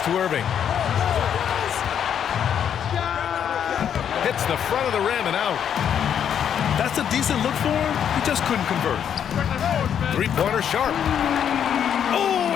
to Irving. Hits the front of the rim and out. That's a decent look for him. He just couldn't convert. Three-pointer Sharpe. Oh,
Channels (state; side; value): quieter; right; 8.7 dB